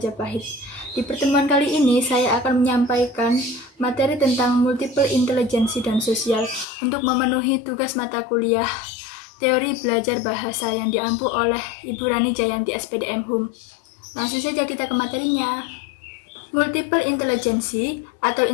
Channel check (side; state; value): right; drops out; at 6.7 s